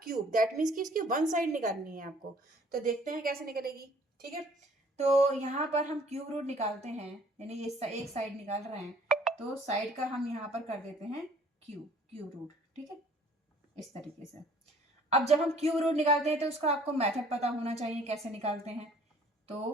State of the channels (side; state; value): both; normal; correlation 0.56